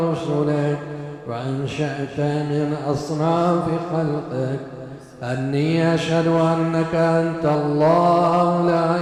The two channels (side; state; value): both; identical; correlation 1.00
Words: وأنشأت من أصناف خلقك، أني أشهد أنك أنت الله لا